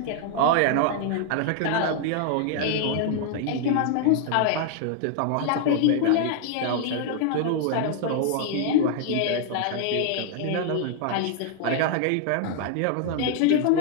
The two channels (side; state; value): both; different; correlation 0.00